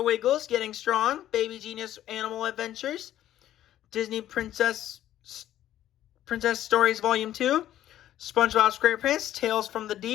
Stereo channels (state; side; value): quieter; right; 12.5 dB